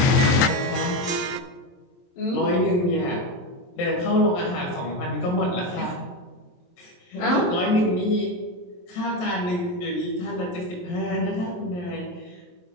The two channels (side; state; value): right; late; 23 ms